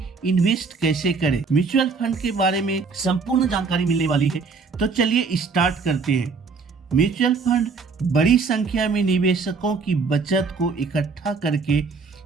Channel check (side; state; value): left; quieter; 4.8 dB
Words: इन्वेस्ट कैसे करें। म्यूचुअल फंड के बारे में संपूर्ण जानकारी मिलने वाली है, तो चलिए स्टार्ट करते हैं। म्यूचुअल फंड बड़ी संख्या में निवेशकों की बचत को इकट्ठा करके